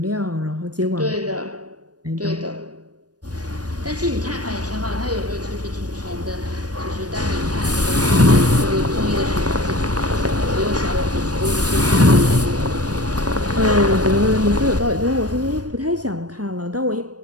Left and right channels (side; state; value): left; late; 0.68 ms